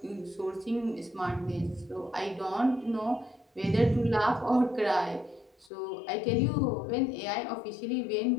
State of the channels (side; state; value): right; drops out; at 5.7 s